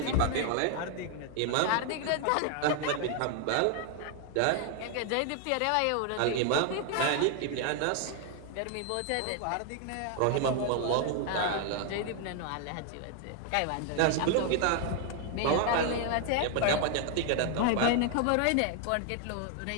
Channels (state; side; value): different; both; correlation 0.00